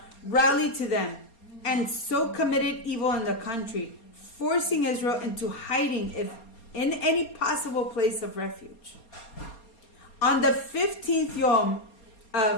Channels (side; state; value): right; late; 4.3 ms